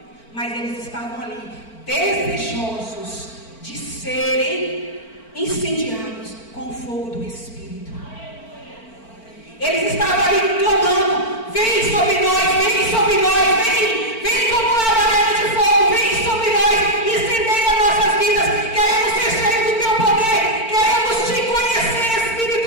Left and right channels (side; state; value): right; late; 4.4 ms